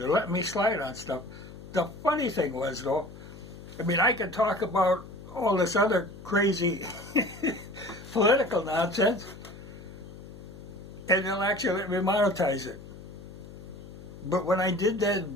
letting me slide on stuff. The funny thing was, though, I mean, I could talk about all this other crazy political nonsense, and they'll actually let me monetize it. But when I did that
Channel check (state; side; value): noise; left; hum, 15 dB below the sound